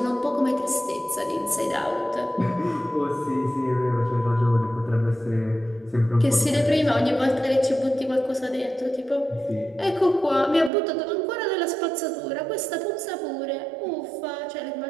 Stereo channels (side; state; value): left; drops out; at 10.7 s